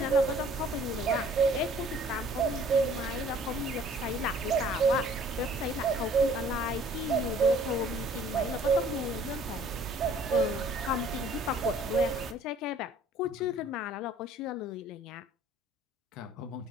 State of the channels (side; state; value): both; normal; correlation 0.54